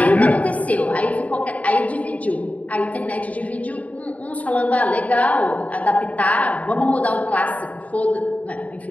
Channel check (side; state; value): right; late; 0.070 ms